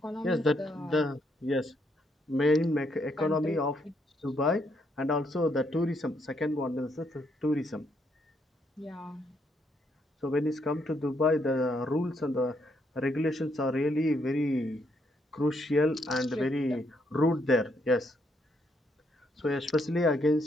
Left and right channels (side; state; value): both; normal; correlation 0.74